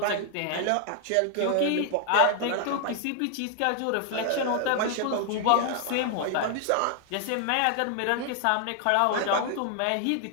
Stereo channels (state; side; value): different; both; correlation 0.00